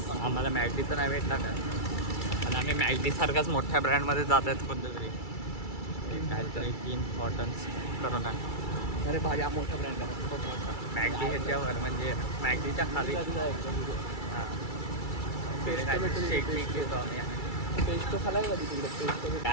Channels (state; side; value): late; right; 2.3 ms